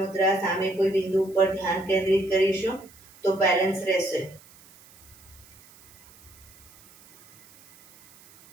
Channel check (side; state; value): right; noise; hiss, 25 dB below the sound